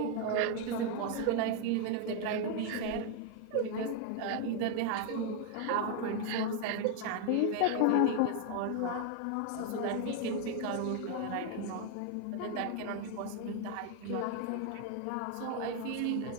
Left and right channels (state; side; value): different; both; correlation 0.01